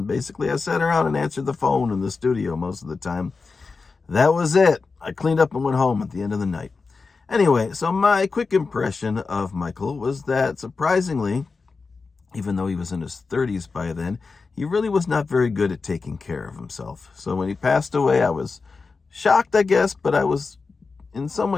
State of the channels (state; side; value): quieter; right; 4.4 dB